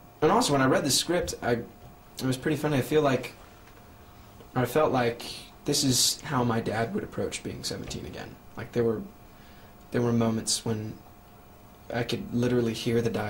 also, when I read the script, it was pretty funny. I felt like this is how my dad would approach being 17 again. Like, there were moments when I could literally hear the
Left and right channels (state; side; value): identical; both; correlation 1.00